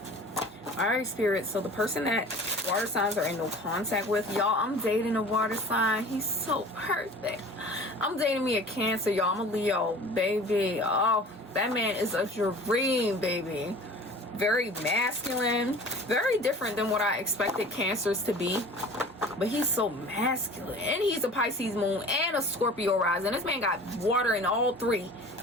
All right, Spirit. So the person that water signs are in no contact with, y'all, I'm dating a water sign. He's so perfect. I'm dating me a Cancer, y'all. I'm a Leo, baby. Oh, that man is a dream, baby. Very masculine, very different than what I expected Cancers to be. But he's so masculine, and he's a Pisces moon and a Scorpio rising. This man got water in all three,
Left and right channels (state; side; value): normal; both; correlation 0.43